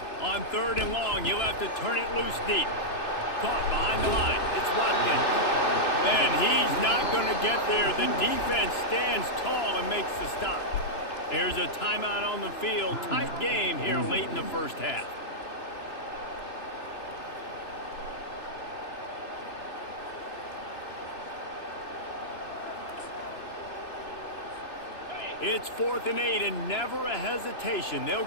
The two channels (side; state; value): right; late; 2.9 ms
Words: On 3rd and long, you'll have to turn it loose deep. Caught behind the line. It's Watkins. And he's not going to get there. The defense stands tall and makes the stop. There's a timeout on the field. Tight game here late in the first half. It's 4th and 8 and never a hesitation. They'll